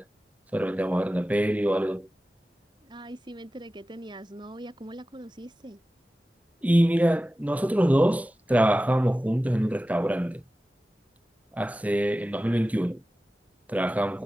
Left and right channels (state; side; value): normal; both; correlation 0.95